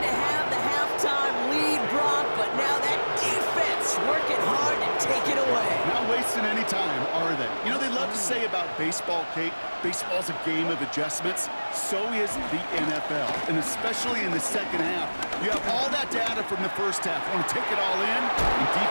have the halftime lead, Brock, but now that defense working hard to take it away. Not wasting any time, are they? You know, they love to say about baseball, Kate, baseball's a game of adjustments. So is the NFL, and especially in the 2nd half. You have all that data from the 1st half. You want to take it all in, and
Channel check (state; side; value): inverted; both; correlation -1.00